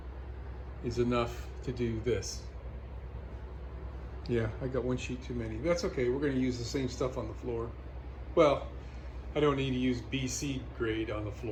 is enough to do this. Yeah, I got 1 sheet too many. That's okay, we're gonna use the same stuff on the floor. Well, I don't need to use BC grade on the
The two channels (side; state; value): both; identical; correlation 1.00